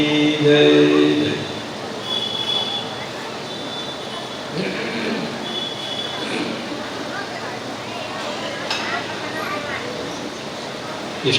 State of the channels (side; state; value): both; identical; correlation 1.00